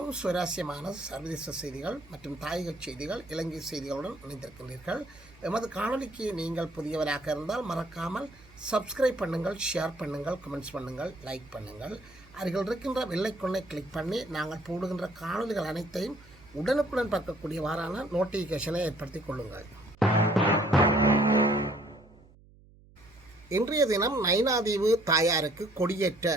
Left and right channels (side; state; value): right; noise; hum, 25 dB below the sound